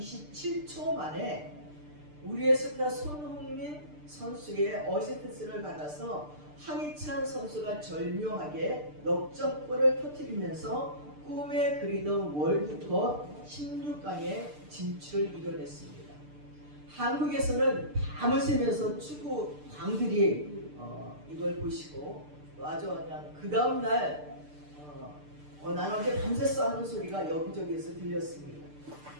만에 우리의 스타 손흥민 선수의 어시스트를 받아서 황희찬 선수가 절묘하게 역전골을 터뜨리면서 꿈에 그리던 월드컵 16강의 진출을 이뤄냈습니다. 한국에서는 밤을 새면서 축구 광들이 이걸 보시고 아주 그냥 그 다음날 난 어제 밤새서 하는 소리가 여기저기에서 들렸습니다.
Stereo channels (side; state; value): left; late; 6.7 ms